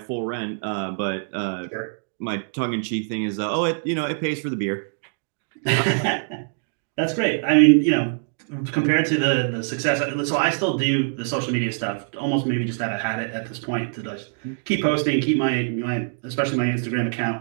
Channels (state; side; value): silent; left; digital silence